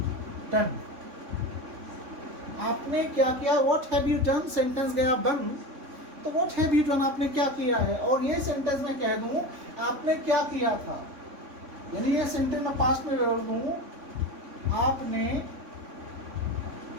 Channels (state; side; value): late; left; 3.6 ms